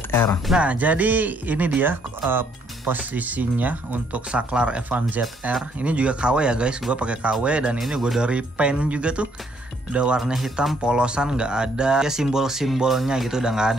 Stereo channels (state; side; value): normal; both; correlation 0.68